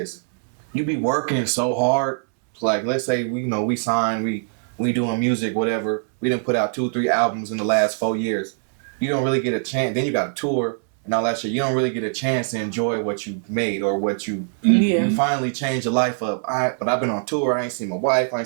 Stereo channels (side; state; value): left; silent; digital silence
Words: You be working so hard, like let's say we signed, we doing music, whatever. We done put out 2-3 albums in the last 4 years. You don't really get a chance. Then you got a tour and all that shit. You don't really get a chance to enjoy what you made or what you finally change your life up. But I've been on tour. I ain't seen my wife. I